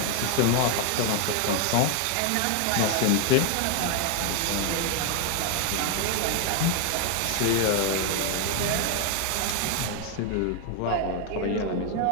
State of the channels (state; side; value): different; both; correlation 0.00